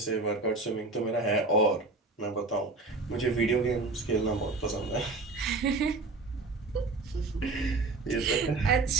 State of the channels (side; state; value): left; quieter; 3.6 dB